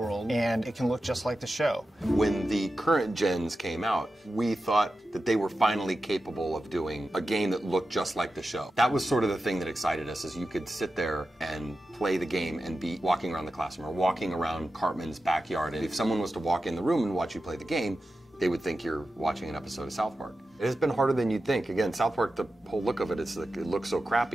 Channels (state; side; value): normal; both; correlation 0.92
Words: and it can look just like the show. When the current gens came out, we thought that they were finally capable of doing a game that looked just like the show. That was sort of the thing that excited us, is you could sit there and play the game and be walking around the classroom or walking around Cartman's backyard. And if someone was to walk in the room and watch you play the game, they would think you're watching an episode of South Park. It has been harder than you'd think. Again, South Park, the whole look of it is like, it looks so